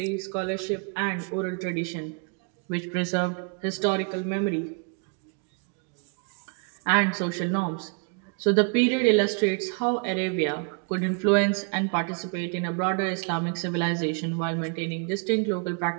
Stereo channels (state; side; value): quieter; left; 38.7 dB